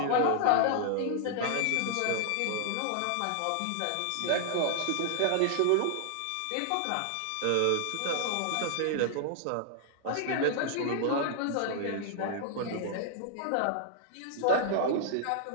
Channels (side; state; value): both; different; correlation 0.00